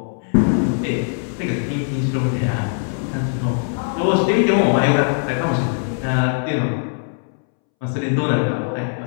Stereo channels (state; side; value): silent; right; 65 dB below the other